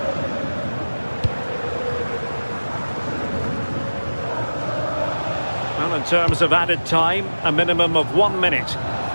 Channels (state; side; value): inverted; both; correlation -1.00